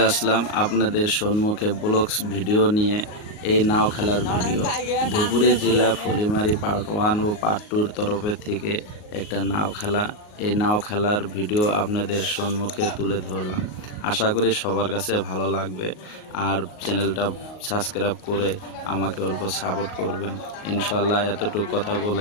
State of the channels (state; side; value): late; right; 38 ms